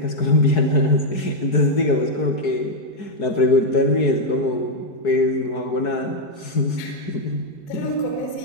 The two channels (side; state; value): right; late; 4.7 ms